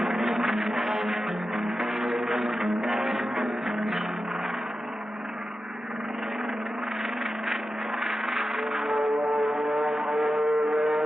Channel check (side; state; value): both; normal; correlation 0.92